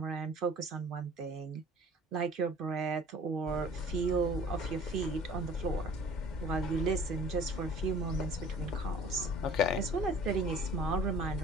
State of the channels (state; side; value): normal; both; correlation 0.48